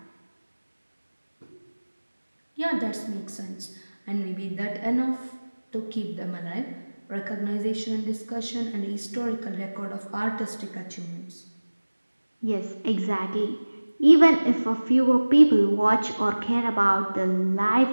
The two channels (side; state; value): both; inverted; correlation -1.00